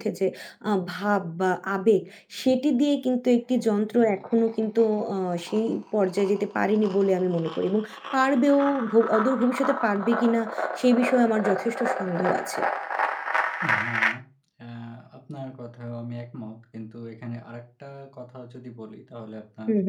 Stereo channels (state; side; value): identical; both; correlation 1.00